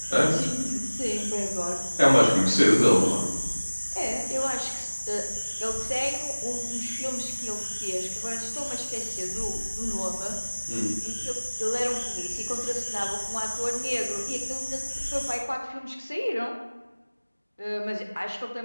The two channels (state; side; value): inverted; both; correlation -1.00